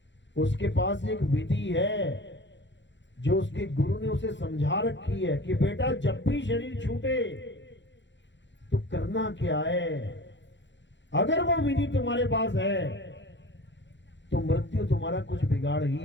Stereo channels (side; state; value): right; late; 0.53 ms